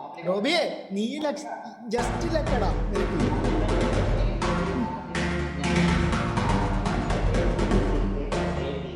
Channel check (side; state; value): both; identical; correlation 1.00